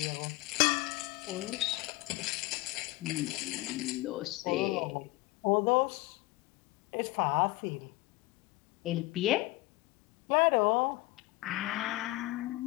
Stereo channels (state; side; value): quieter; right; 20.5 dB